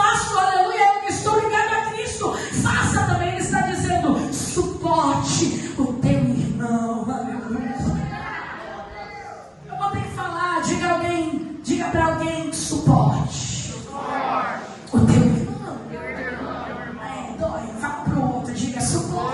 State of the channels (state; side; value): identical; both; correlation 1.00